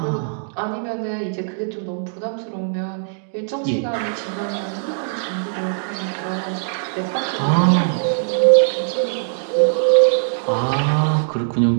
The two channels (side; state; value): left; silent; digital silence